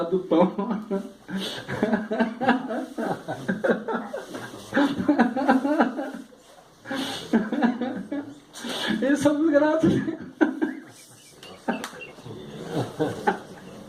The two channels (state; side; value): identical; both; correlation 1.00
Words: do pão. Eles somos gratos.